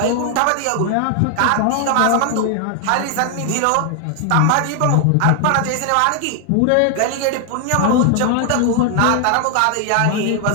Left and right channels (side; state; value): both; different; correlation 0.00